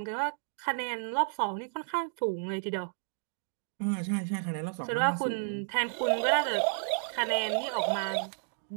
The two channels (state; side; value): silent; left; digital silence